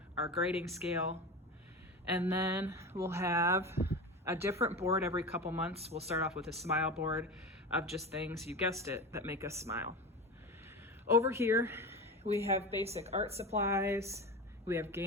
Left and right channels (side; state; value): both; normal; correlation 0.26